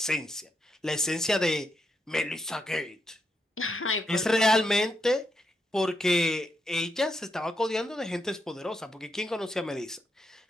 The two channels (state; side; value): normal; both; correlation 0.81